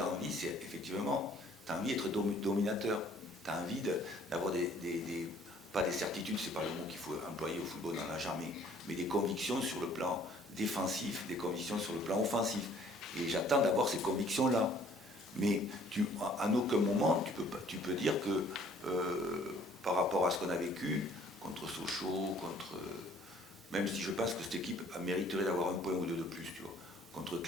envie, c'est effectivement, tu as envie d'être dominateur. Tu as envie d'avoir pas des certitudes, c'est pas le mot qu'il faut employer au football, dans la jamais, mais des convictions sur le plan défensif, des convictions sur le plan offensif. Et j'attends d'avoir ces convictions-là. Mais à aucun moment, tu peux dire que par rapport à ce qu'on a vécu, contre Sochaux, même si je pense que cette équipe mériterait d'avoir un point ou deux de plus, tu vois. Contre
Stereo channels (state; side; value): normal; both; correlation 0.57